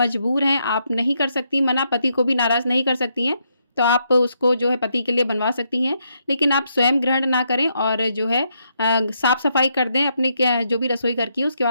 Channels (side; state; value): both; inverted; correlation -0.78